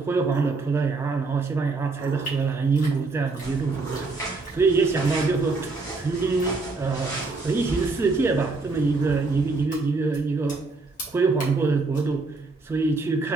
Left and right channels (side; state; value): left; quieter; 3.8 dB